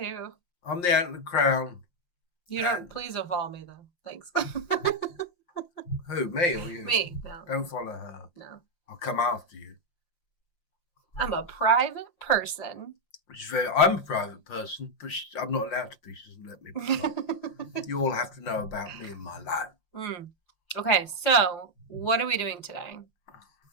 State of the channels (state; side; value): late; right; 5.7 ms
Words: I'm the Antlered Crown. Please don't follow me though. Thanks. Who, me or you? Me, no. Don't follow her. No. I'll come after you. I'm a private person. I'm a private person, but I'm not allowed to be. She doesn't let me be. You all have to know about me and my life. Okay, so what are we doing today?